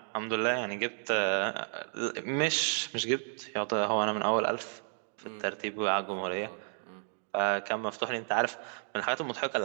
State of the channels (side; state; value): left; silent; 56 dB below the other